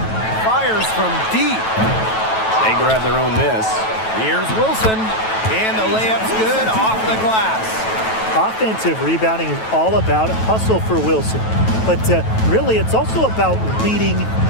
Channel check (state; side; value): late; right; 9.2 ms